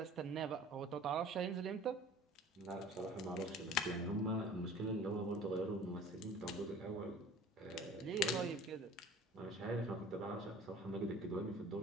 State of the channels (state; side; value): normal; both; correlation 0.45